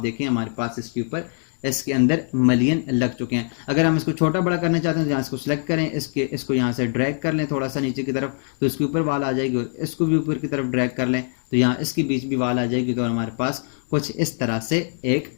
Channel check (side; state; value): right; silent; 56 dB below the other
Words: हमारे पास इसके ऊपर इसके अंदर मलियन लग चुके हैं। अगर हम इसको छोटा बड़ा करना चाहते हैं तो यहाँ इसको सिलेक्ट करें, इसको यहाँ से ड्रैग कर लें थोड़ा सा नीचे की तरफ, तो इसके ऊपर वाल आ जाएगी और इसको भी ऊपर की तरफ ड्रैग कर लें तो यहाँ इसके बीच भी वाल आ जाएगी। तो हमारे पास कुछ इस तरह से एक